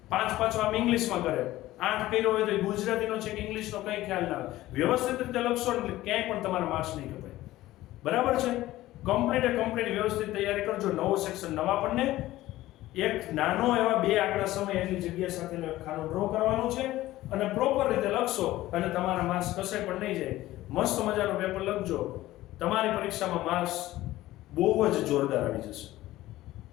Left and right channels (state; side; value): quieter; right; 16.1 dB